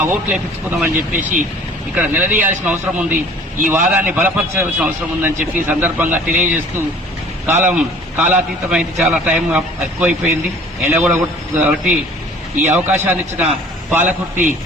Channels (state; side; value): normal; both; correlation 0.50